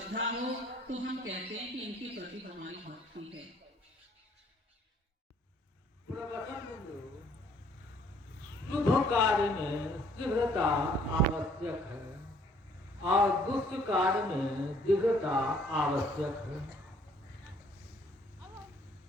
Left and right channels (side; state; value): both; normal; correlation 0.61